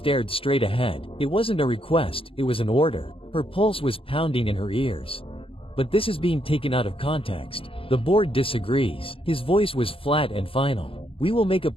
straight ahead. It wasn't a request, it was an order. Her pulse was pounding in her ears. But this is being taken out of context. The board disagrees. His voice was flat and final. We will make a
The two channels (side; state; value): right; late; 0.26 ms